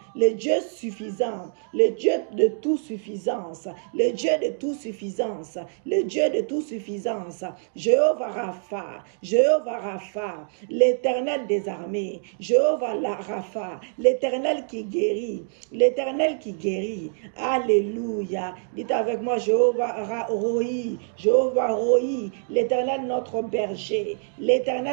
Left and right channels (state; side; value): silent; left; digital silence